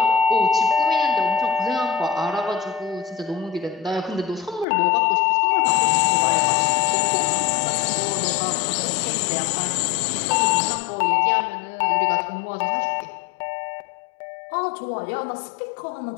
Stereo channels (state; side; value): drops out; right; at 4.7 s